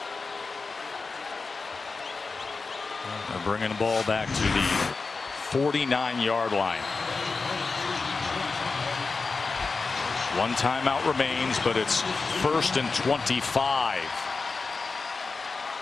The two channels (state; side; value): quieter; right; 4.2 dB